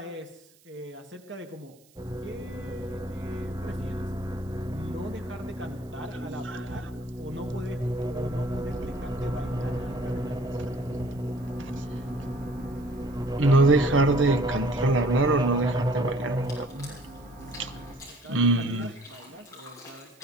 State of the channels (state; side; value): noise; right; hiss, 30 dB below the sound